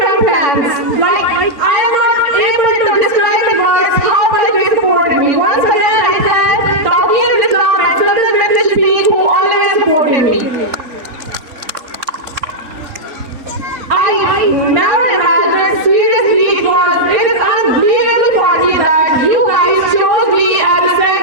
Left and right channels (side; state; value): left; late; 3.5 ms